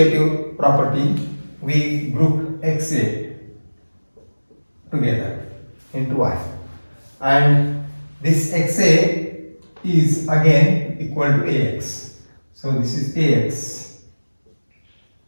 property, we group xa together into y, and this xa is again equal to ax, so this is ax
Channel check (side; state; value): both; inverted; correlation -1.00